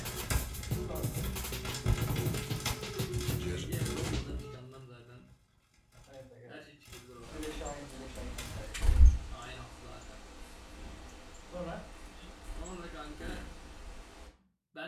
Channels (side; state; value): both; identical; correlation 1.00